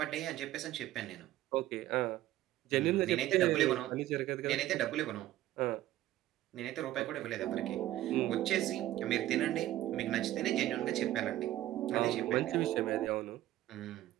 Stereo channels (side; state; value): left; quieter; 14.4 dB